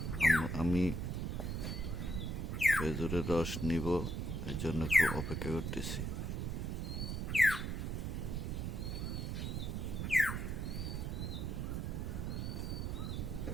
আমি খেজুরের রস নিব, এর জন্য খুব অপেক্ষা করতেছি।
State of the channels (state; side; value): noise; right; rumble, 2 dB below the sound